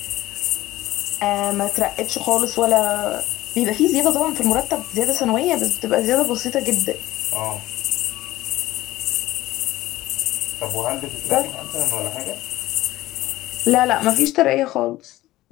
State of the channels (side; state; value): right; quieter; 16.7 dB